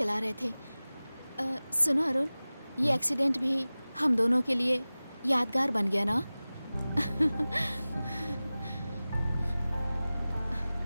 रहे थे। सुनो अरुण, ये एक्सीडेंट भी हम दोनों के लिए यादगार बन गया ना?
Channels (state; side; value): inverted; both; correlation -0.98